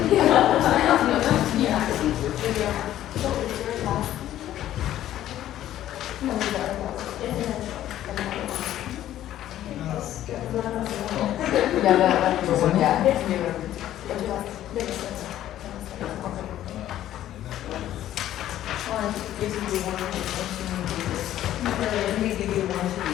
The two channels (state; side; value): quieter; right; 12.7 dB